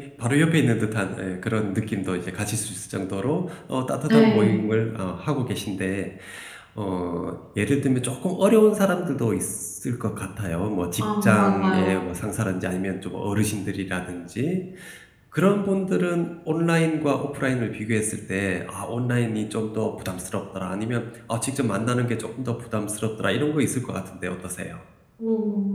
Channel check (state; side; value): identical; both; correlation 1.00